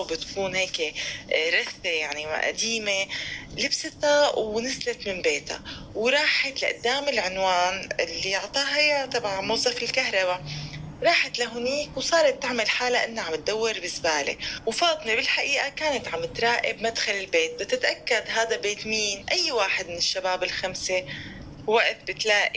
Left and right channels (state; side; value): identical; both; correlation 1.00